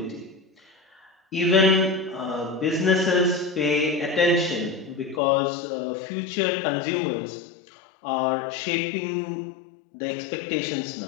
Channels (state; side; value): drops out; right; at 5.2 s